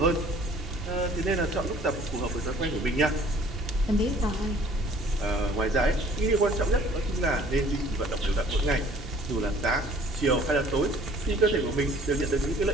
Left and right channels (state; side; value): normal; both; correlation 0.54